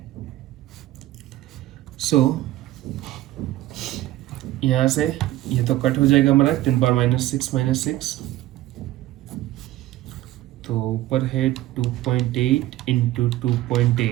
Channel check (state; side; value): quieter; left; 15.4 dB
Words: सो यहाँ से ये तो कट हो जाएगा हमारा 10⁻⁻6 -6, तो ऊपर है 2.8 into